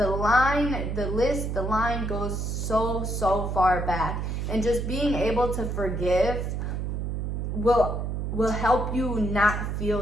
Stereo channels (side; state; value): right; noise; hum, 2 dB below the sound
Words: line goes so far back. And just being able to forgive will help you not